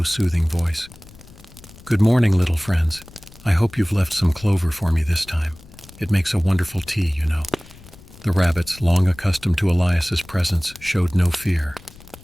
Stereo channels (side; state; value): left; noise; rumble, 21 dB below the sound